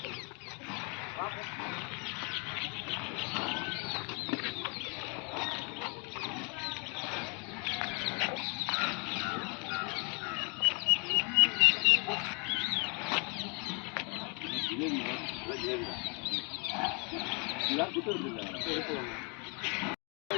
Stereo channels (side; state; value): right; quieter; 34.2 dB